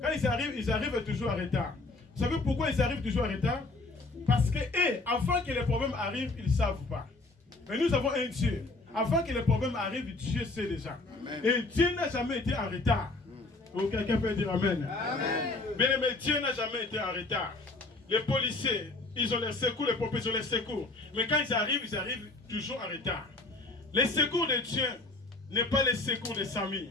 ils arrivent toujours en retard. Vous savez pourquoi ils arrivent toujours en retard? Parce que, avant que les problèmes arrivent, ils ne savent pas. Mais nous avons un Dieu. Avant que les problèmes arrivent, Dieu sait déjà. Amen. Et Dieu n'a jamais été en retard. Donc, quelqu'un peut dire amen. Mais Dieu n'a jamais été en retard. Les policiers, ils ont les secours, les pompiers, ils ont les secours. Mais quand ils arrivent toujours en retard. Les secours de Dieu n'est pas les secours de Samy.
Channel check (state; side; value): quieter; right; 3.2 dB